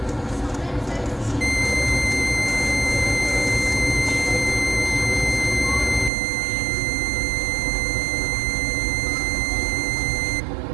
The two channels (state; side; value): drops out; left; at 6.1 s